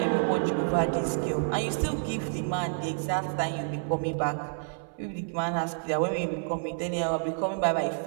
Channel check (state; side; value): silent; left; 59 dB below the other